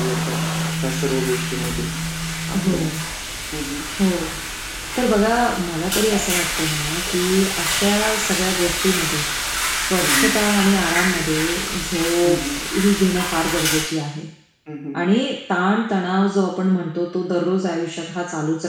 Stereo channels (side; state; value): both; identical; correlation 1.00